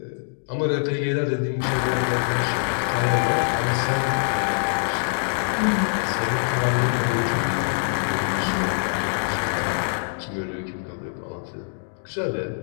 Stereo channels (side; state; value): right; silent; digital silence